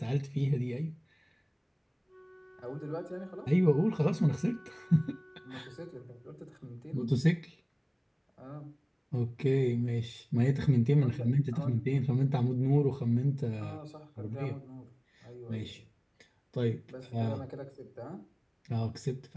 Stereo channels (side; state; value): both; identical; correlation 1.00